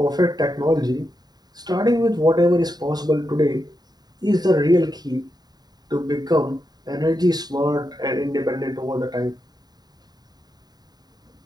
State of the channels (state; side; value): late; left; 0.20 ms